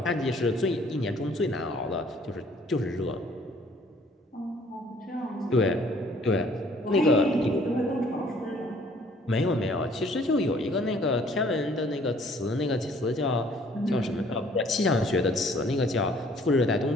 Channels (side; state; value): both; normal; correlation 0.58